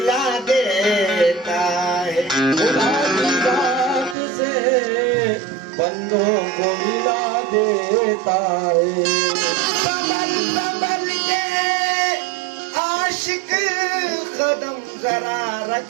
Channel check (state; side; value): drops out; left; at 4.2 s